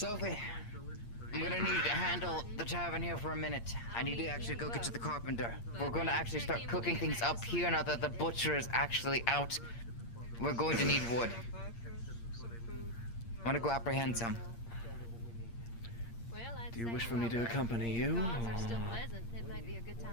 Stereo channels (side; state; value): right; late; 8.6 ms